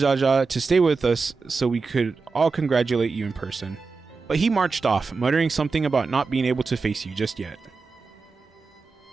to stay with us so we could all congratulate you in person, but he marched off, muttering something about not being able to face you just yet.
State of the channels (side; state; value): left; quieter; 4.5 dB